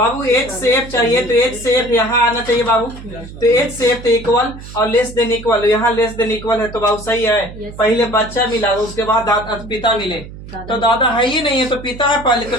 एच से एफ चाहिए तो एच से एफ यहाँ आना चाहिए बाबू। तो एच से एफ तो इक्वल और लेस देन इक्वल, यहाँ लेस देन इक्वल है तो बाबू सही है। पहले बच्चा मिला उसके बाद पिता मिले तो दादा है ही नहीं है तो पिता है पहले, तो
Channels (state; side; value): noise; right; hum, 14 dB below the sound